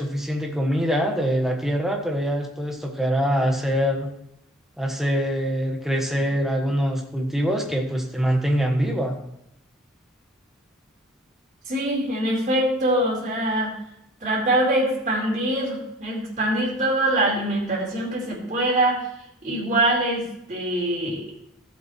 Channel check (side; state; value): both; normal; correlation 0.47